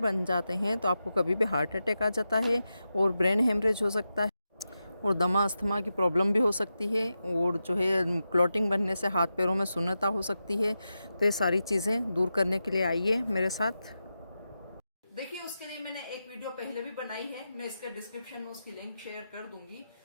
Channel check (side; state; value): both; inverted; correlation -0.90